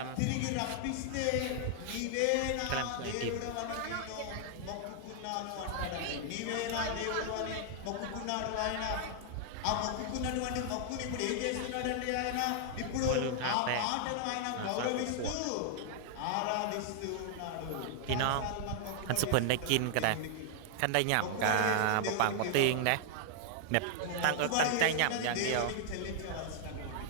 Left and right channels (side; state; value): both; different; correlation -0.01